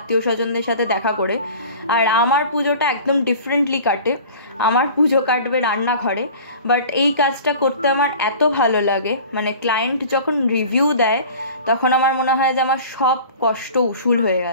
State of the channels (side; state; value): both; inverted; correlation -0.42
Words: স্বজনদের সাথে দেখা করে। আর আমার পুজোটা একদম ডিফারেন্টলি কাটে। আমার পুজো কাটবে রান্নাঘরে। বাট এই কাজটা করতে আমার এত ভালো লাগে, মানে ক্লায়েন্ট যখন রিভিউ দেয় তখন আমার মনে হয় যে আমার সব কষ্ট উসুল হয়ে